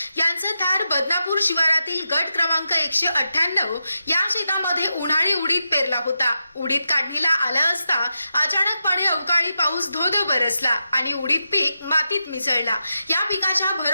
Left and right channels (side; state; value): both; inverted; correlation -0.88